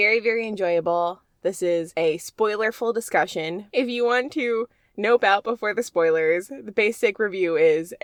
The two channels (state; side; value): identical; both; correlation 1.00